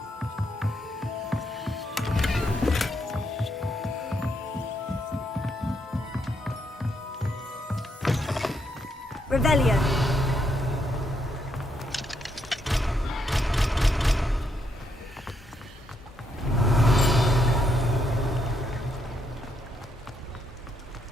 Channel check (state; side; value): normal; both; correlation 0.76